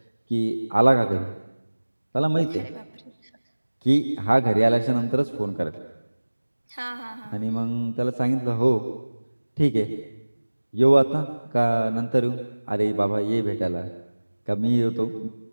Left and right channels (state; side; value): inverted; both; correlation -1.00